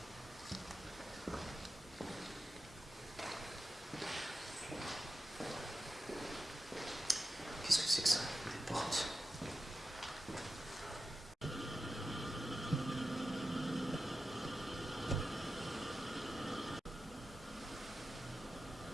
Qu'est-ce que c'est que ça? Des portes.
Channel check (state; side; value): normal; both; correlation 0.92